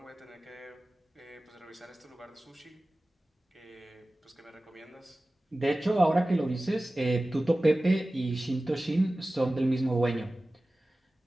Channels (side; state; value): both; normal; correlation 0.97